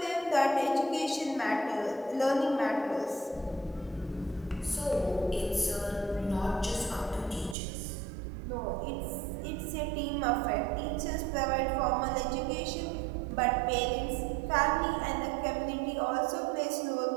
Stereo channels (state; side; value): drops out; left; at 7.6 s